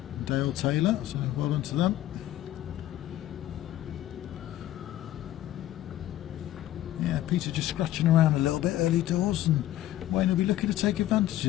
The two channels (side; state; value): right; quieter; 13.7 dB